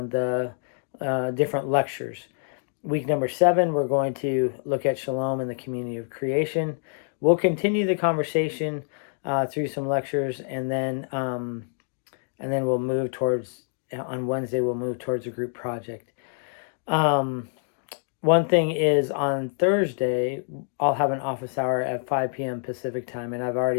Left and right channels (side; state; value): right; silent; digital silence